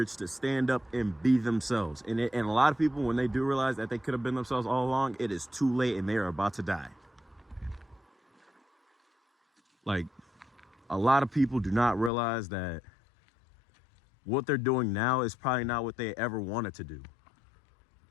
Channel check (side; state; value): right; drops out; at 12.1 s